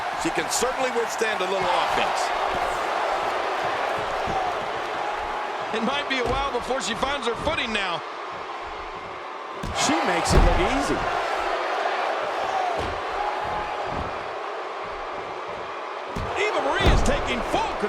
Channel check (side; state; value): both; identical; correlation 1.00